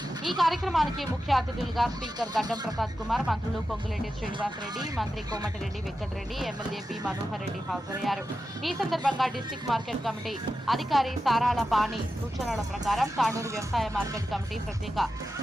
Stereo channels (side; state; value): both; normal; correlation 0.91